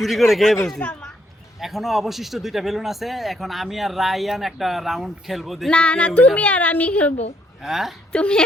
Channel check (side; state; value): both; normal; correlation 0.71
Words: করে খেয়ে ফেলছি। এখনো অবশিষ্ট 2টা বেলুন আছে, এখন আমি আর রায়ান একটা রাউন্ড খেলবো। দেখি না কে না, winner তুমি হয়। আর আমি খেলবো। হ্যাঁ, তুমি